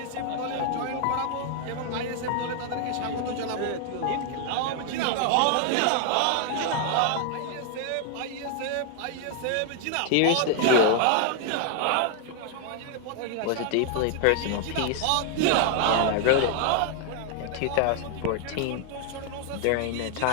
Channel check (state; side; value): different; both; correlation 0.00